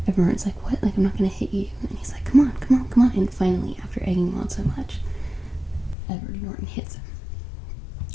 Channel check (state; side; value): drops out; right; at 6.0 s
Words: everyone's like, what? Like, I'm not gonna hit you. And he's like, come on. And finally, after egging him on so much, Edward Norton hits him.